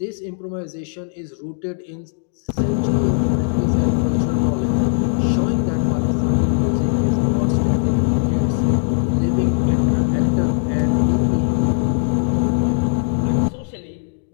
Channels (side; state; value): right; silent; digital silence